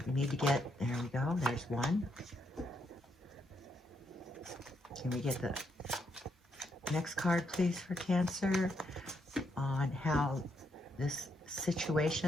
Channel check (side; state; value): both; normal; correlation 0.77